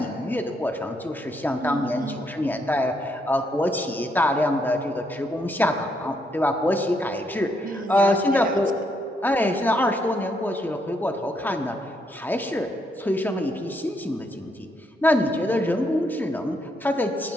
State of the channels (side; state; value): both; normal; correlation 0.75